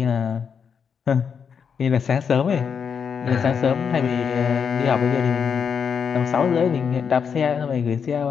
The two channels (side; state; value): right; quieter; 6.7 dB